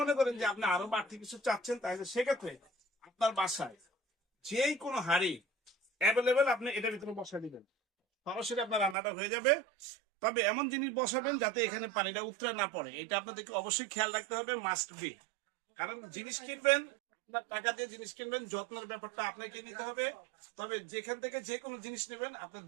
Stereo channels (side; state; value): left; drops out; at 9.0 s